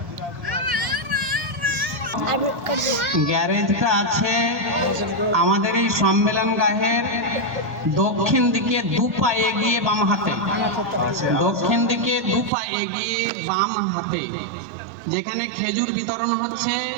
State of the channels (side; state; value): left; drops out; at 12.5 s